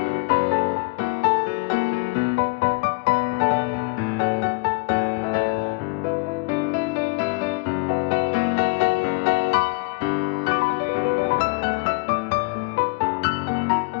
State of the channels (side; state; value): right; quieter; 29.1 dB